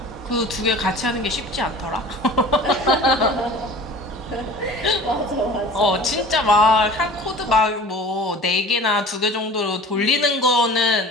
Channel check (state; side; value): normal; both; correlation 0.42